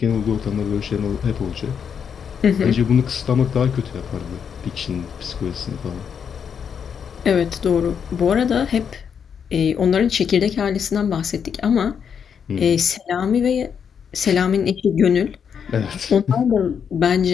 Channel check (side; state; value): right; quieter; 7.3 dB